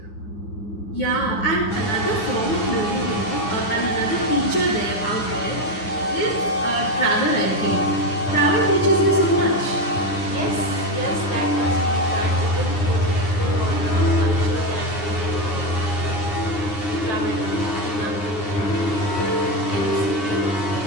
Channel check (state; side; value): late; right; 9.7 ms